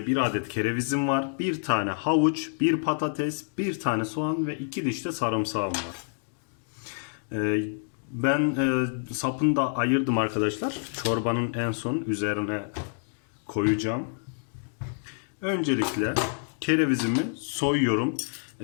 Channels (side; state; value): right; silent; digital silence